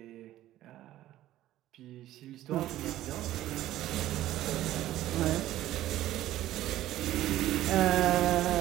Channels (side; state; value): left; quieter; 14.1 dB